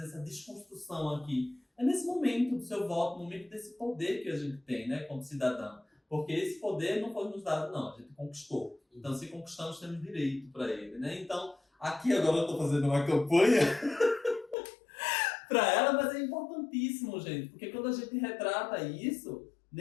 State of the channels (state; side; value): drops out; right; at 14.6 s